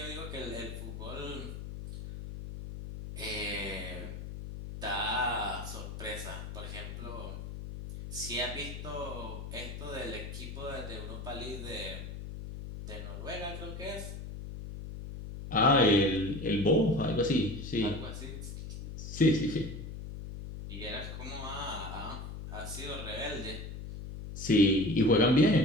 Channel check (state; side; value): noise; left; hum, 9 dB below the sound